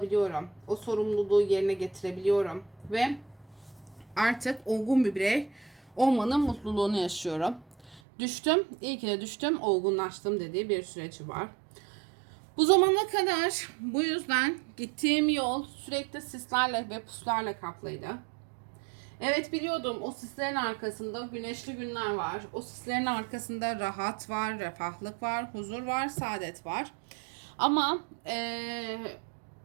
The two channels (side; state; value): left; drops out; at 8.0 s